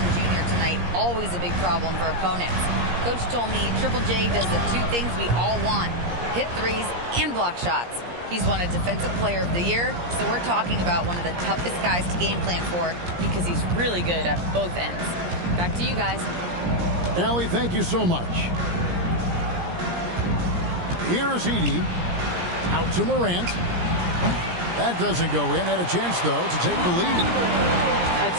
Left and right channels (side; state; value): left; late; 17 ms